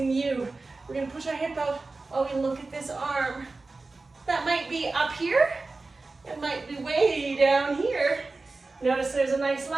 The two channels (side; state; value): left; quieter; 3.6 dB